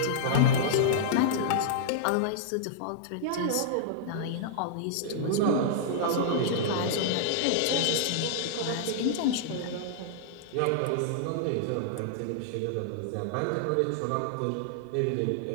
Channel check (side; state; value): both; different; correlation -0.01